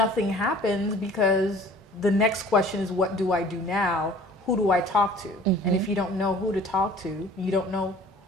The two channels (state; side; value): normal; both; correlation 0.49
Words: happens, because the next question is, what do I do now? Who do I talk to? And if you don't know who to talk to, you don't know